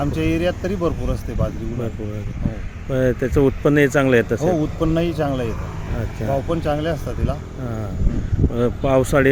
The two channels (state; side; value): identical; both; correlation 1.00